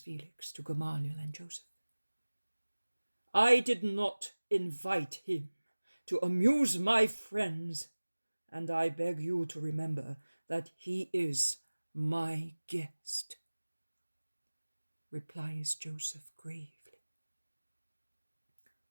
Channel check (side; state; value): both; inverted; correlation -1.00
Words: to Gamaliel and Joseph. I did not invite him to amuse my friends, and I beg you to remember that he is my guest, replies Joseph gravely.